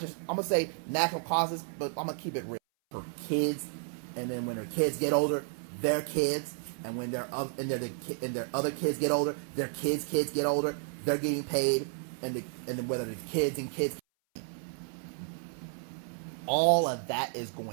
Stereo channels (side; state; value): left; silent; 56 dB below the other